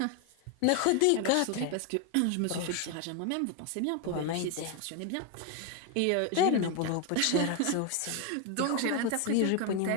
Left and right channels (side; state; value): both; different; correlation 0.01